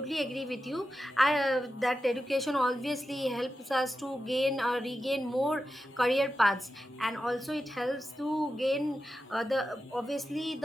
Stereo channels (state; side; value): normal; both; correlation 0.91